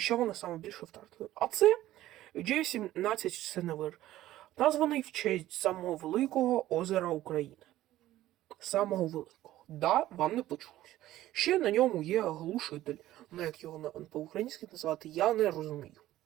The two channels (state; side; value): quieter; left; 14.7 dB